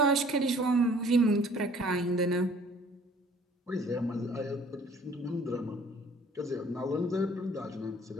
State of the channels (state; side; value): normal; both; correlation 0.54